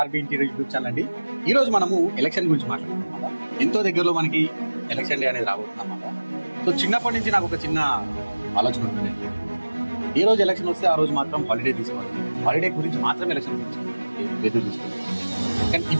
interior YouTube channel అండి. ఈ రోజు మనము ఎలక్షన్ గురించి మాట్లాడుతున్నాం. ఎంతో దగ్గరలో మనకి ఎలక్షన్ డే అనేది రాబోతుంది అన్నమాట. సో చిన్నప్పటి నుంచి నాకు ఒక చిన్న ఆలోచన ఉంటుంది. ఏ రోజు ఎలక్షన్ వస్తే ఆ రోజు మాత్రం హాలిడే తీసుకోవాలి, హాలిడే గురించి మాత్రం ఎలక్షన్ గురించి ఎదురు చూస్తుంది. కానీ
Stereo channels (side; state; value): both; inverted; correlation -1.00